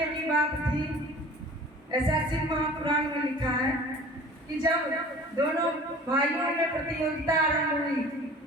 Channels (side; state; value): both; normal; correlation 0.44